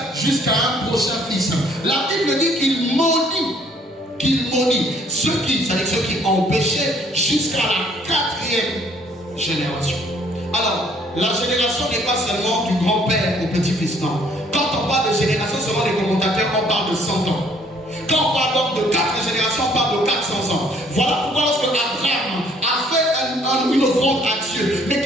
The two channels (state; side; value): normal; both; correlation 0.62